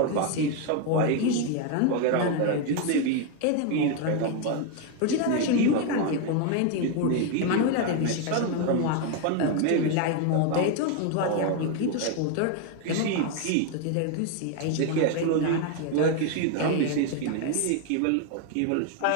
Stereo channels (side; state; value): both; different; correlation 0.01